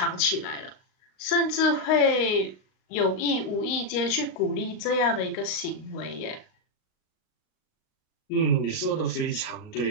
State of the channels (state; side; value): late; right; 38 ms